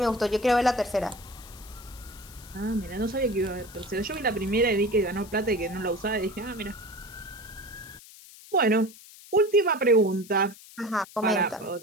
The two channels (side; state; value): left; noise; hiss, 20 dB below the sound